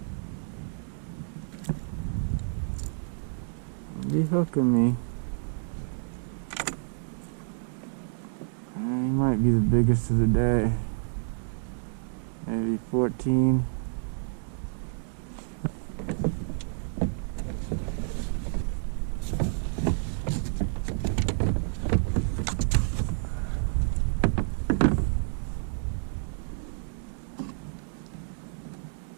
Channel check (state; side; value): silent; left; digital silence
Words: Be hooking me. He might be the biggest of the day. Maybe 14.